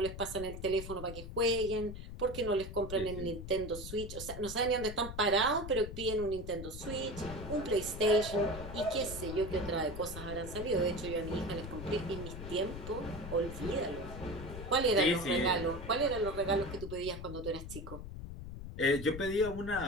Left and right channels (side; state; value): left; noise; rumble, 9 dB below the sound